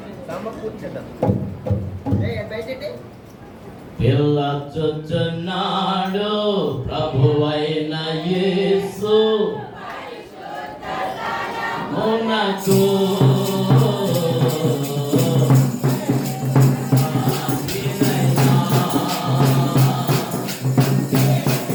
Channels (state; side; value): identical; both; correlation 1.00